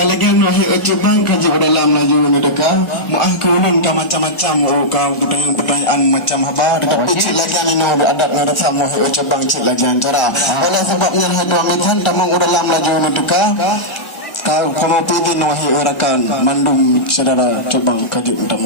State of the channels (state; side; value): late; right; 1.4 ms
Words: lagi nak ujuk bang kaji dalam laju mendeka. Muah kulun macam-macam kau kita yang pertanyaan macam apa. Tetapi cik lagi ni nak adat ngarasa muah ujuk bang cik lagi cara. Oleh sebabnya hadu amitan tamang dalam laju mendeka. Kau kamu pilih nuhi orakan mandum saudara coba kaji